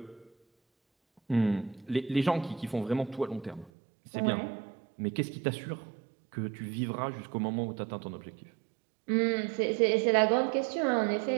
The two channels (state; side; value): drops out; left; at 3.7 s